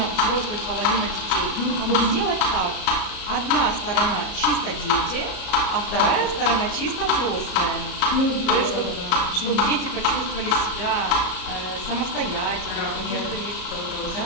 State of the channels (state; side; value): late; right; 34 ms